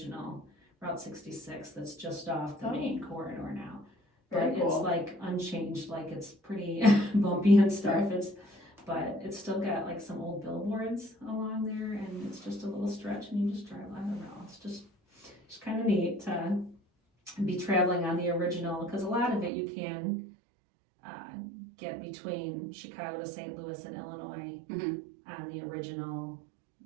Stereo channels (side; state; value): left; drops out; at 19.5 s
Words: Route 66 that's just off the main corridor now. Very But cool. it's like unchanged, like it's pretty bumpy and stuff. But it's still got like some old billboards along there, and it's just a little stretch, and you just drive. I don't know. It's just neat to be traveling on the original, because a lot of it you can get between Chicago to St. Louis and Illinois on the original